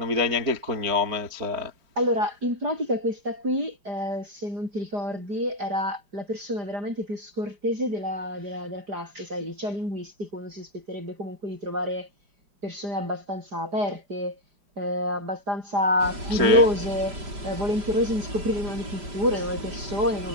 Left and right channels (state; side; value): late; left; 5.1 ms